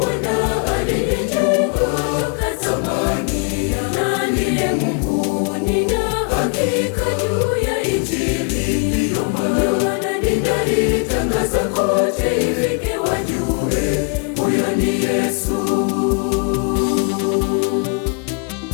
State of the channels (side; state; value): right; quieter; 35.8 dB